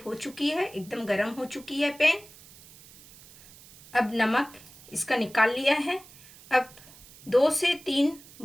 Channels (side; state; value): right; noise; hiss, 21 dB below the sound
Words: हो चुकी है, एकदम गरम हो चुकी है पैन। अब नमक इसका निकाल लिया है। अब 2 से 3